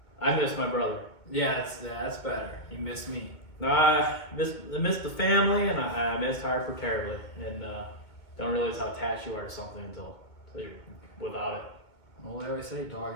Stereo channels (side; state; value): right; late; 2.2 ms